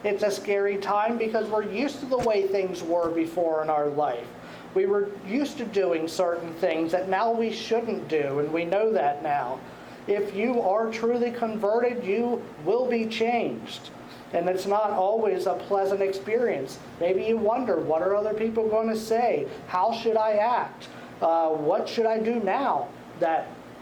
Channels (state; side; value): identical; both; correlation 1.00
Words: It's a scary time because we're used to the way things were before in our life. We were used to doing certain things that now we shouldn't do, and we know that now. If you are truly converted, you will be changed. And it's not always a pleasant experience. Maybe you wonder, what are other people going to say? How should I act? What should I do now that